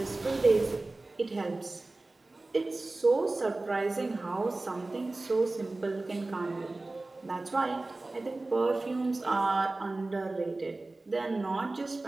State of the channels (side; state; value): left; quieter; 3.1 dB